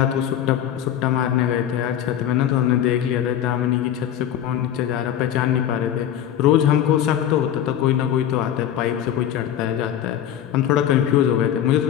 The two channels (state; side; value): quieter; right; 10.5 dB